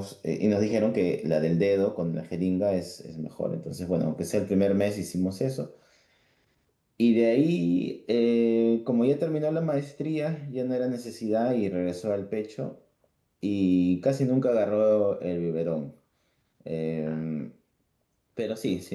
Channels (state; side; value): identical; both; correlation 1.00